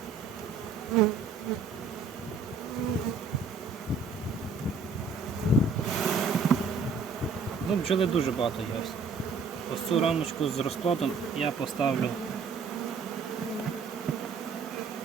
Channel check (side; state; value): left; quieter; 4.7 dB